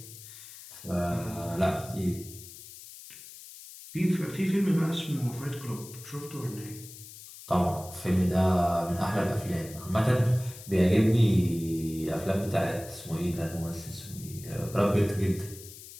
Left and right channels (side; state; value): left; noise; hiss, 16 dB below the sound